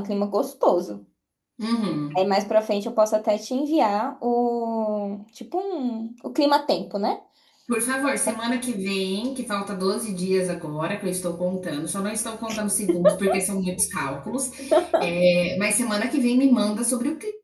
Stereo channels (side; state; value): both; identical; correlation 1.00